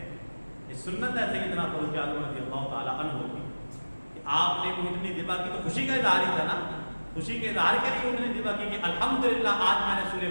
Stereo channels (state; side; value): inverted; both; correlation -1.00